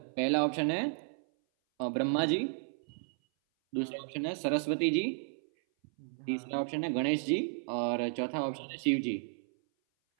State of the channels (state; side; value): silent; left; 56 dB below the other